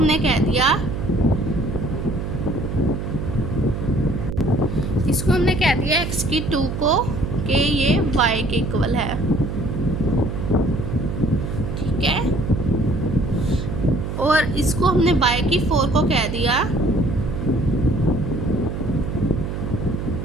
कह दिया, इसको हमने कह दिया x की 2 को कि ये y के इक्वल है, ठीक है। और इसको हमने y की 4 को कह दिया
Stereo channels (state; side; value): noise; right; hum, 4 dB below the sound